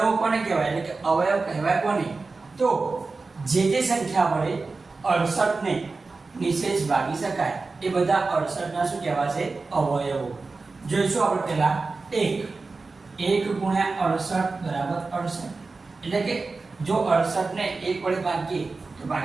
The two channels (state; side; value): quieter; left; 3.9 dB